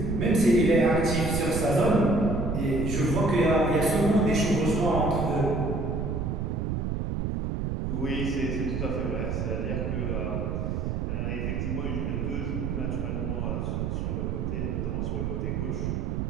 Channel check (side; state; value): right; noise; rumble, 1 dB below the sound